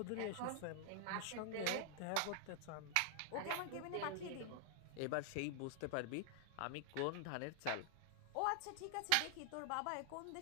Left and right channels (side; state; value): both; different; correlation 0.00